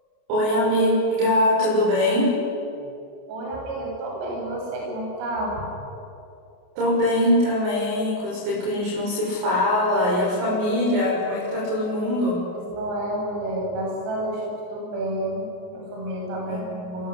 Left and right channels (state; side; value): late; left; 28 ms